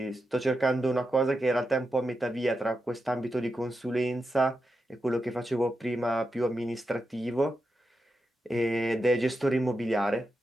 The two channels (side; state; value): both; normal; correlation 0.88